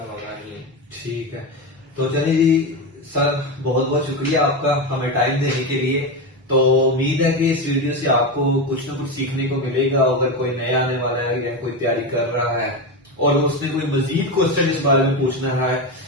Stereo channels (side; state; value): both; normal; correlation 0.16